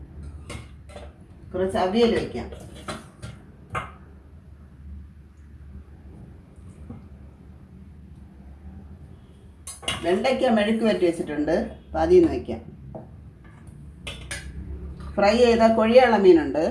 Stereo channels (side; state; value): both; identical; correlation 1.00